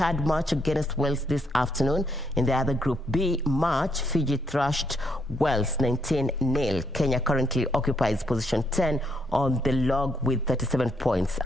match against Wales this afternoon. In the other Group B match, Fiji thrashed Wales 19-0. Kenya currently occupies position 10 on the log with 37 points.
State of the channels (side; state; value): both; normal; correlation 0.75